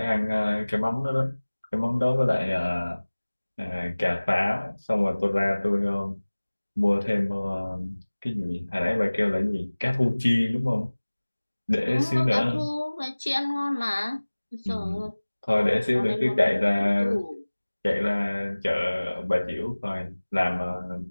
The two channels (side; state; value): both; inverted; correlation -1.00